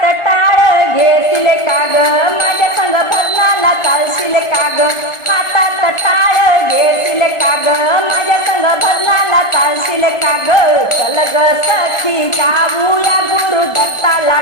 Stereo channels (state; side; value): late; right; 1.4 ms